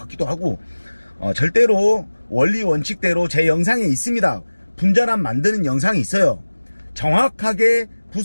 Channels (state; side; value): inverted; both; correlation -1.00